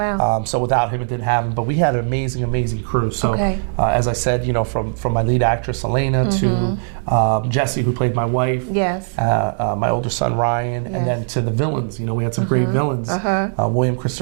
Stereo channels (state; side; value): silent; left; digital silence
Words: So without him, it didn't happen. But we had an amazing, amazing crew. So as I said, from my lead actress Elena to Jessie, who played my wife. Yes. My older son Ryan, and then to the villains. We had some great villains. William